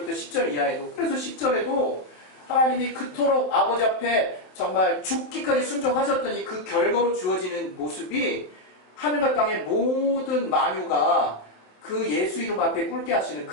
10절 이하에도, 그래서 10절에도 하나님이 그토록 아버지 앞에 정말 죽기까지 순종하셨더니 그 결과로 주어지는 모습이 하늘과 땅의 모든 만유가 그 예수 이름 앞에 꿇게 하시는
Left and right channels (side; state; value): right; late; 27 ms